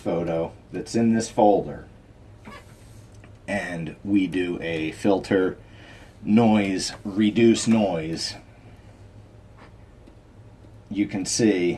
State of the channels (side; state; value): both; identical; correlation 1.00